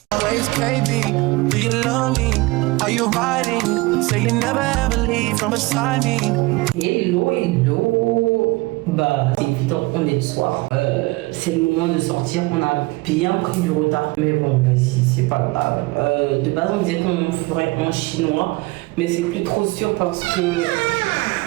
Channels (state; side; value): quieter; left; 22.9 dB